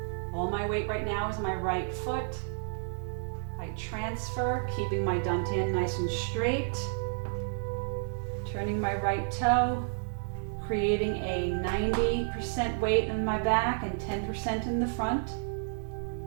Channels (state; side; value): silent; left; digital silence